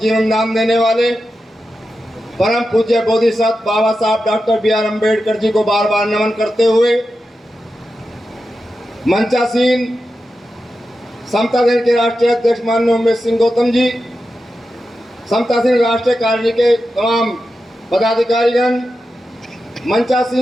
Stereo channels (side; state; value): both; normal; correlation 0.90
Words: दान देने वाले परम पूज्य बोधिसत्व बाबा साहब doctor B are Ambedkar ji को बार बार नमन करते हुए मंचासीन समता दल के राष्ट्रीय अध्यक्ष माननीय उमेश सिंह गौतम जी, समतासीन राष्ट्रीय कार्यकारिणी के तमाम पदाधिकारीगण,